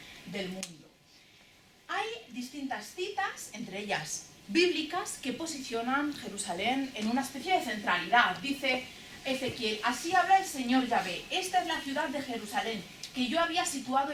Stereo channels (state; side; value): identical; both; correlation 1.00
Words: del mundo. Hay distintas citas, entre ellas bíblicas, que posicionan Jerusalén en una especie de centralidad. Dice Ezequiel: así habla el Señor Yahvé, esta es la ciudad de Jerusalén, que yo había situado